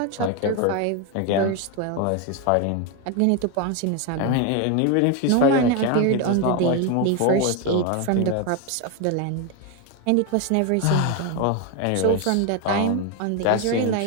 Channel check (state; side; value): different; both; correlation 0.02